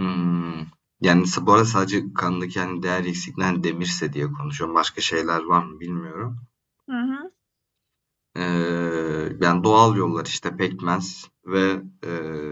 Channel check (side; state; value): both; identical; correlation 1.00